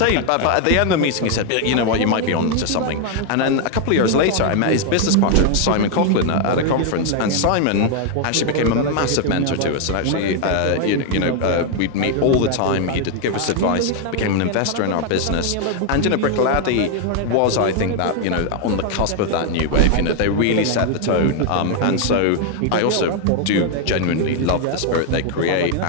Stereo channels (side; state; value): both; different; correlation 0.00